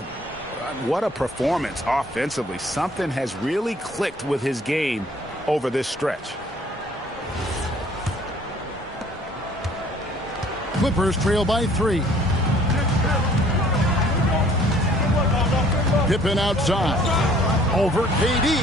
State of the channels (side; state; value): both; normal; correlation 0.57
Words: What a performance offensively. Something has really clicked with his game over this stretch. Clippers trail by 3. Pippen outside. Over KD.